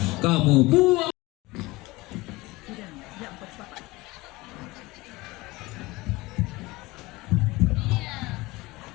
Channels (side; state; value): right; quieter; 21.3 dB